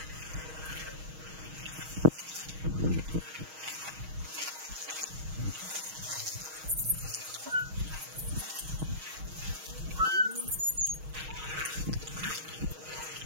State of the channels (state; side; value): late; left; 6.3 ms